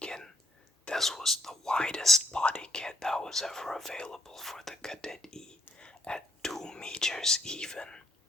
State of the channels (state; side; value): normal; both; correlation 0.71